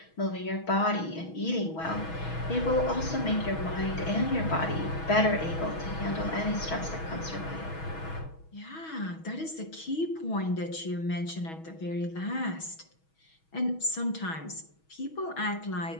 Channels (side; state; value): right; late; 6.2 ms